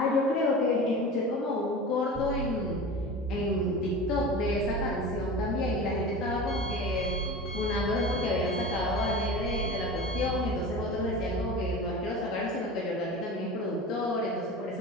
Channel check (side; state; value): both; normal; correlation 0.33